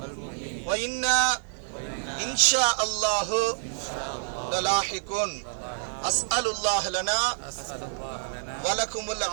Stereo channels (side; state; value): left; silent; digital silence